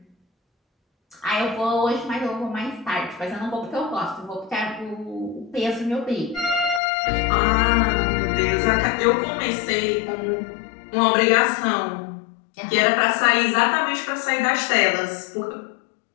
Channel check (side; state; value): right; drops out; at 6.8 s